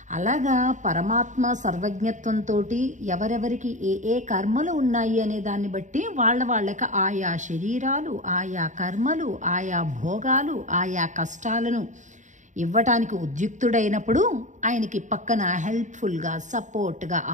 అలాగా పరమాత్మ సర్వజ్ఞత్వంతో ఎవరెవరికి ఏ కర్మలు ఉన్నాయి అనే దాన్ని బట్టి వాళ్ళకి ఆయా శరీరాలు, ఆయా కర్మలు, ఆయా భోగాలు, ఆయా కష్టాలను ఇవ్వటానికి ఉద్యుక్తుడైనప్పుడు ఆయనకి పక్కన హెల్ప్ఫుల్గా, సపోర్ట్గా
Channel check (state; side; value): late; left; 0.36 ms